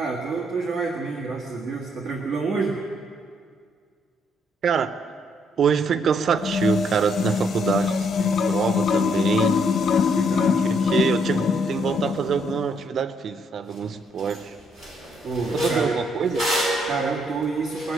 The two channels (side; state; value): both; normal; correlation 0.71